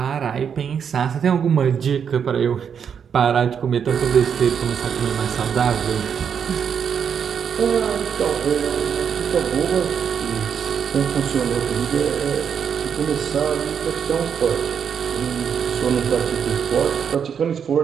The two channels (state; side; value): quieter; left; 7.4 dB